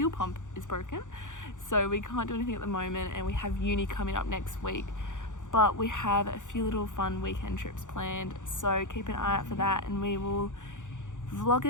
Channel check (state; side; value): late; right; 0.86 ms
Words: pump is broken, so we can't do anything at the moment, and we have uni coming up next week. But we have a few little fun weekend trips planned, so keep an eye out for that, and we will vlog